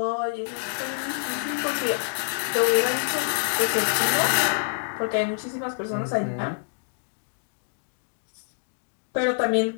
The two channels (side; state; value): right; silent; digital silence